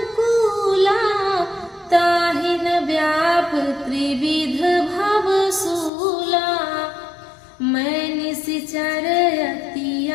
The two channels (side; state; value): right; drops out; at 5.9 s